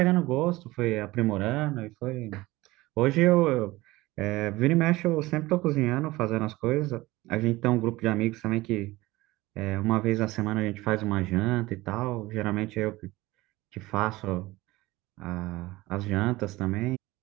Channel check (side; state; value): left; quieter; 19.5 dB